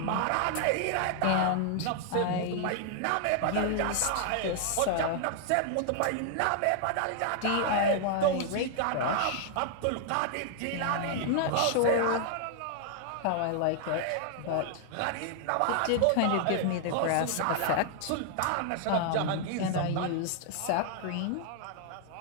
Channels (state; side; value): different; both; correlation 0.00